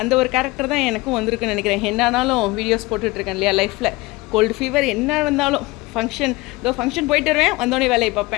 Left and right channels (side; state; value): right; quieter; 21.7 dB